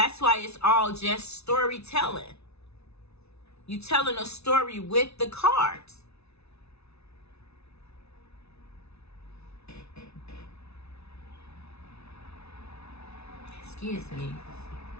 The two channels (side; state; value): right; late; 0.80 ms